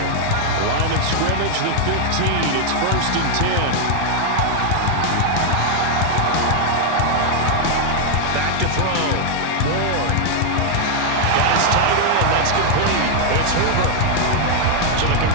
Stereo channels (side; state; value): both; different; correlation 0.00